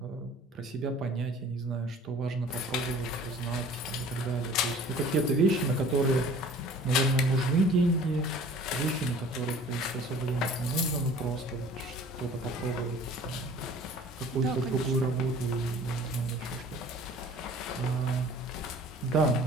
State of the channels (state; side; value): normal; both; correlation 0.48